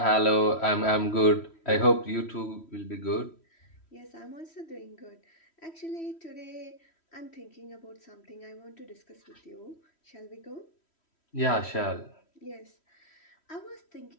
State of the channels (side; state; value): right; late; 3.1 ms